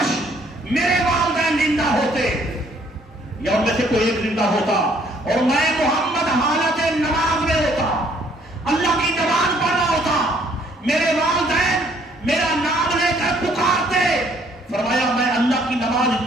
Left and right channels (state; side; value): normal; both; correlation 0.63